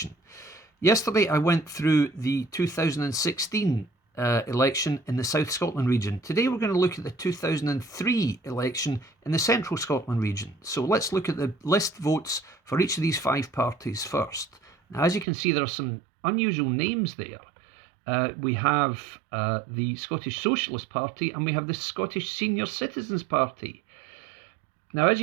Yesterday I went through the 2016 election in the South Scotland region. Today we're going to look at the 2003 election in the Central Scotland region. So let's look at the list votes for each of these five parties first. Now, as you can see, there are some unusual names there. We have the Scottish Socialist Party and we have the Scottish Senior Citizens Party. Now, as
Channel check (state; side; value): drops out; left; at 15.2 s